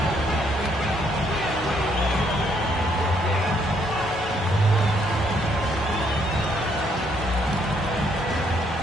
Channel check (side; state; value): both; normal; correlation 0.70